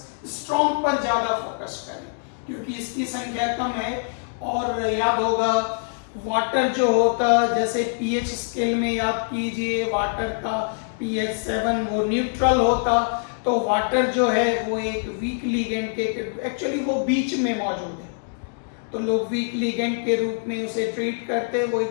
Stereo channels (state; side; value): silent; right; digital silence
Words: स्ट्रॉन्ग पर ज्यादा फोकस करें क्योंकि इसकी संख्या कम है। और याद होगा वाटर जो होता, जैसे पीएच स्केल में याद कीजिए, वाटर का पीएच 7 वो न्यूट्रल होता, तो वाटर जो है वो एक वीक लिगेंड के एक्चुअली वो बीच में मौजूद है, तो लोग वीक लिगेंड के रूप में उसे ट्रीट करते हैं। वो